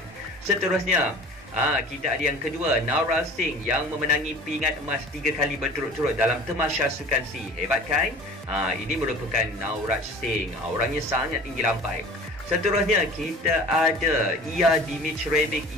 Seterusnya, kita ada yang kedua, Naural Singh yang memenangi pingat emas 3 kali berturut-turut dalam Tamasya Sukan SEA. Hebat kan? Ini merupakan Naural Singh. Orangnya sangat tinggi lampai. Seterusnya kita ada Dmitrievic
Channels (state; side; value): normal; both; correlation 0.43